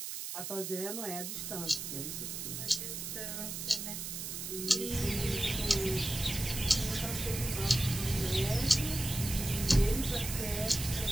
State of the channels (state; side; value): noise; right; hiss, 6 dB below the sound